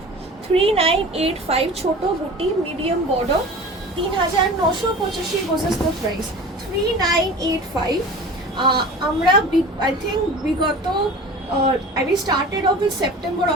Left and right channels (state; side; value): normal; both; correlation 0.38